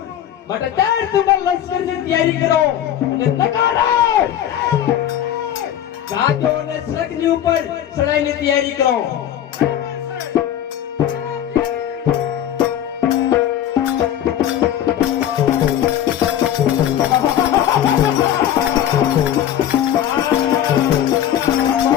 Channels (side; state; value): right; quieter; 10.7 dB